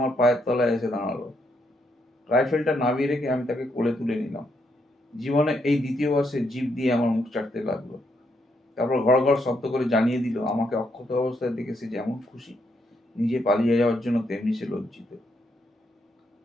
পায়ের তলায় এসে দাঁড়ালো। রাইফেলটা নামিয়ে রেখে আমি তাকে কোলে তুলে নিলাম। জীবনে এই দ্বিতীয়বার সে জিভ দিয়ে আমার মুখ চাটতে লাগলো। তারপর ঘড় ঘড় শব্দ করে জানিয়ে দিল আমাকে অক্ষত অবস্থায় দেখে সে যেমন খুশি, নিজে পালিয়ে যাওয়ার জন্য তেমনি সে লজ্জিত।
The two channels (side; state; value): both; normal; correlation 0.77